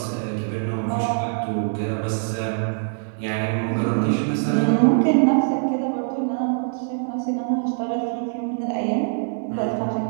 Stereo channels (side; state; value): left; silent; digital silence